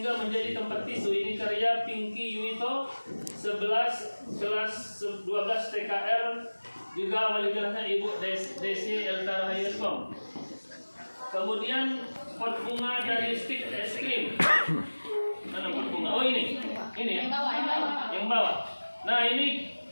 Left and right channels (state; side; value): inverted; both; correlation -1.00